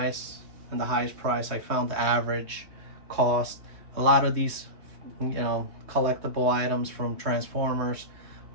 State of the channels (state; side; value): late; left; 3.2 ms